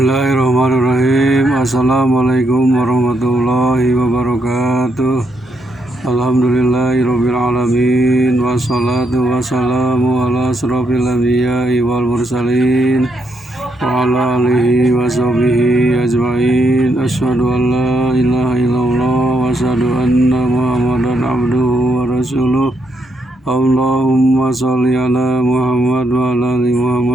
Assalamualaikum warahmatullahi wabarakatuh. Alhamdulillahirabbil alamin. Wassalatu wassalamu ala asrofil anbiya'i wal mursalin wa ala alihi wa sahbihi ajma'in. Asyhadu an la ilaha illallah wa asyhadu anna Muhammadan abduhu wa rasuluh. Allahumma sholli ala Muhammad wa ala ali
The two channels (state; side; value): normal; both; correlation 0.78